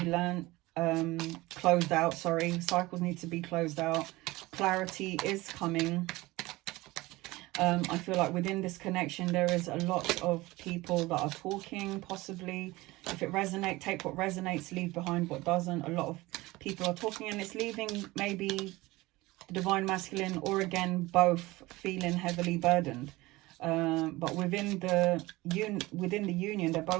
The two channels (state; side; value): quieter; left; 20.2 dB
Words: learnt, closed out, sorry. Cycles need to be closed out. Clarity is coming. I feel like within this connection, there is a lot of people that are talking, possibly. If it resonates, take what resonates, leave behind what doesn't. A lot of people are talking, and it's leaving maybe the divine masculine, or again, both feeling heavily burdened. But within the union, they're